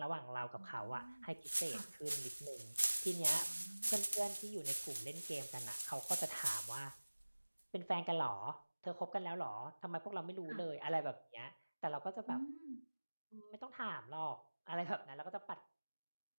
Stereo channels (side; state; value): both; inverted; correlation -1.00